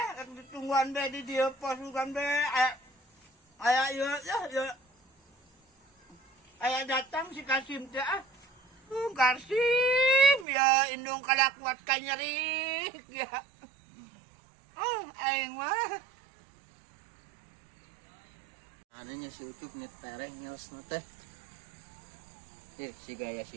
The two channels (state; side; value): drops out; left; at 10.5 s